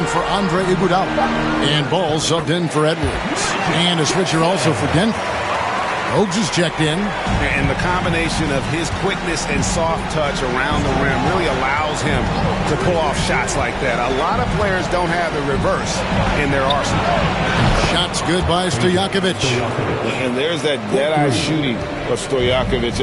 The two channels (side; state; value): both; identical; correlation 1.00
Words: for Andre Iguodala. And Ball subbed in for Edwards. And a switcher also for Denver. Oaks is checked in. And the combination of his quickness and soft touch around the rim really allows him to pull off shots like that. A lot of players don't have the reverse in their arsenal. Shots good by Stojakovic. And there's that dead-eye shooting of Stojakovic,